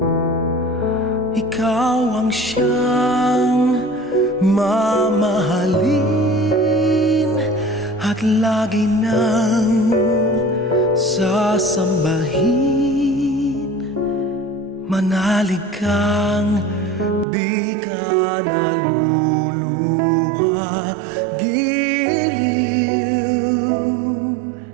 Ikaw ang siyang mamahalin at lagi nang sasambahin. Manalig kang di ka naluluha, giliw.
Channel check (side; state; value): left; drops out; at 17.2 s